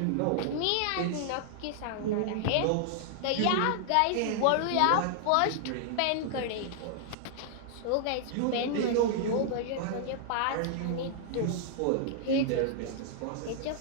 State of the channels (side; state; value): both; different; correlation -0.01